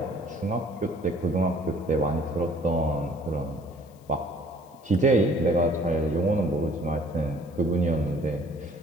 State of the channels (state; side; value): noise; left; hiss, 30 dB below the sound